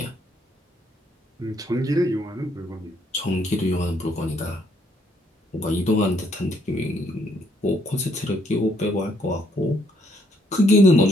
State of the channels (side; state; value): both; normal; correlation 0.70